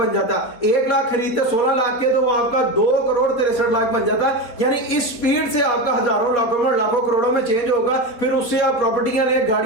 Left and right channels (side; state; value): right; late; 4.5 ms